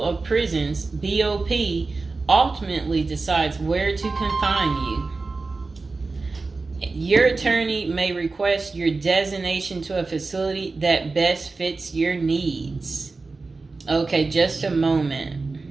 of Prisons, BOP, ultimately decides where to confine you. Your attorney may request your designation to a facility that best fits your needs. Okay, just a moment.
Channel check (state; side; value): quieter; left; 3.8 dB